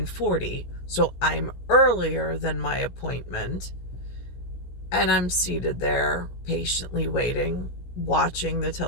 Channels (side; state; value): right; late; 17 ms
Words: so I'm earlier than my appointment. And I'm seated there, patiently waiting, watching the